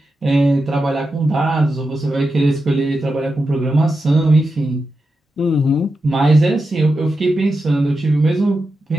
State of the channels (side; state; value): both; normal; correlation 0.89